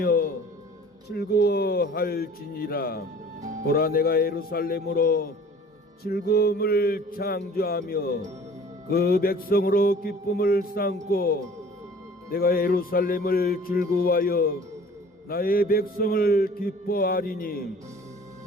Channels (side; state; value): both; normal; correlation 0.48